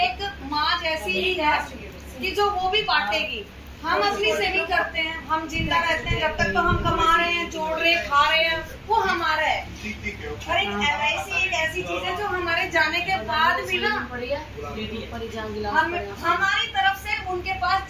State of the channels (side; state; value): both; identical; correlation 1.00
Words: एक माँ जैसी ही है कि जो वो भी बांटेगी। हम अपनी सेविंग करते हैं, हम जिंदा रहते हैं, जब तक तो हम कमा रहे हैं, जोड़ रहे हैं, खा रहे हैं, वो हमारा है। और एक LIC एक ऐसी चीज है जो हमारे जाने के बाद भी ना हमारी तरफ से उनके पास